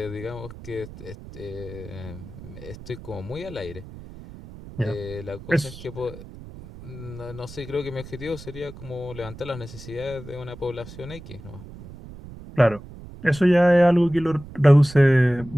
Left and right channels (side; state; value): right; noise; rumble, 15 dB below the sound